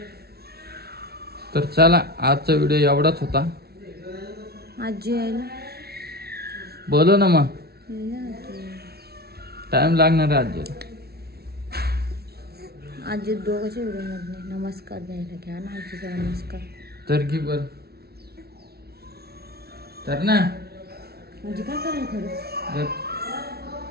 तर चला आजचा व्हिडिओ एवढाच होता. आजी यायला बोलो ना मग. टाइम लागणार आहे आजीला. आजी दोघांच्या व्हिडिओ मध्ये नमस्कार द्यायला घ्या ना. आजीचा नमस्कार तर की बर तर ना. म्हणजे काय करायला खरं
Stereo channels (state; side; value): late; left; 0.45 ms